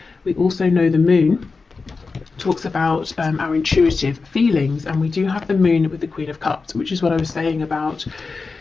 We also know the moon talks about our intuitive feelings, and we do have the moon with the Queen of Cups, which is what I was saying about,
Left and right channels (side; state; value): right; quieter; 4.3 dB